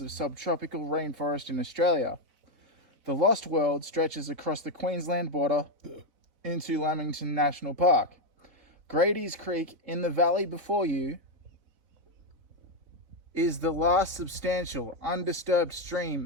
of subtropical rainforest in Australia. The Lost World stretches across the Queensland border into Lamington National Park. Grady's Creek in the valley before you is the last substantial, undisturbed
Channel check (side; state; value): left; late; 3.8 ms